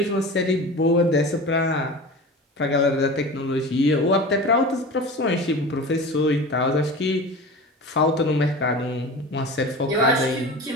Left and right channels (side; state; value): both; normal; correlation 0.33